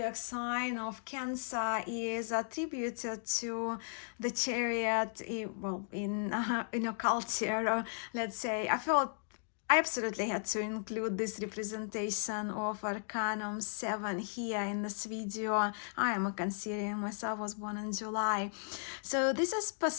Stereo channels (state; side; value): silent; right; digital silence